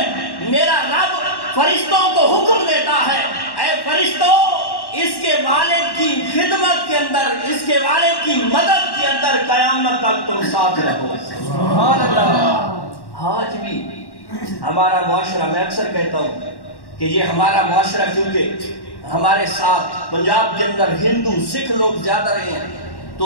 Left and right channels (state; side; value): late; right; 1.1 ms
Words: میرا رب فرشتوں کو حکم دیتا ہے، اے فرشتوں اس کے والد کی خدمت کے اندر، اس کے والد کی مدد کے اندر قیامت تک تم ساتھ رہو۔ سبحان اللہ۔ آج بھی ہمارا معاشرہ، میں اکثر کہتا ہوں کہ یہ ہمارا معاشرہ کیونکہ ہمارے ساتھ پنجاب کے اندر ہندو سکھ لوگ زیادہ رہے ہیں